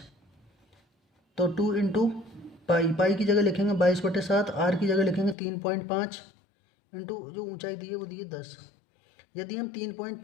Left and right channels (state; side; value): drops out; right; at 5.4 s